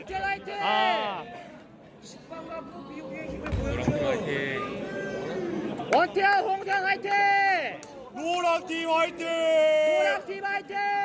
화이팅 아, 원태현 홍세원 화이팅 노랑팀 화이팅. 노랑팀 화이팅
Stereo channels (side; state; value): both; identical; correlation 1.00